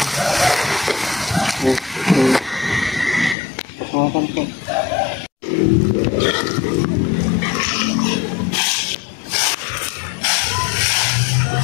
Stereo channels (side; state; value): right; drops out; at 3.4 s